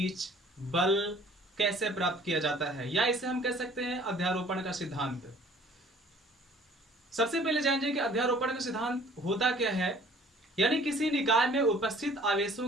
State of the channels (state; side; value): normal; both; correlation 0.53